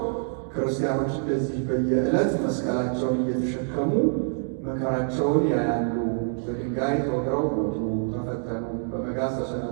ክርስቲያኖች እንደዚህ በየዕለት መስቀላቸውን እየተሸከሙ መከራቸውን ያያሉ። በድንጋይ ተወግረው ሞቱ፣ ተፈተኑ፣ በመጋዝ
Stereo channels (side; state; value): left; silent; digital silence